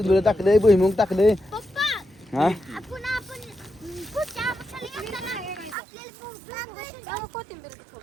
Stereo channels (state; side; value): drops out; left; at 5.8 s